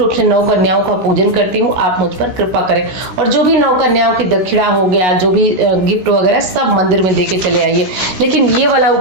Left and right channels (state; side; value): late; left; 16 ms